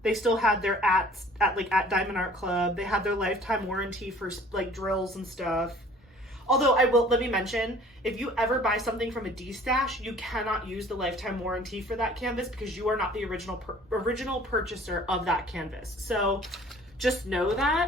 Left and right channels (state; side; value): normal; both; correlation 0.51